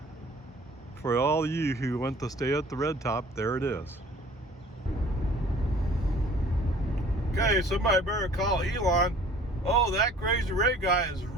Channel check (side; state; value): both; normal; correlation 0.51